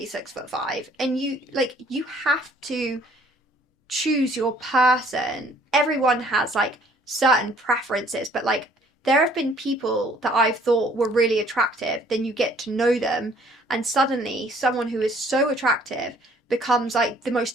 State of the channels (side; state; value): both; normal; correlation 0.59